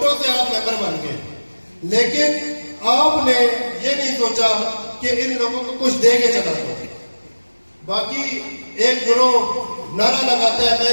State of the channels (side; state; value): both; inverted; correlation -1.00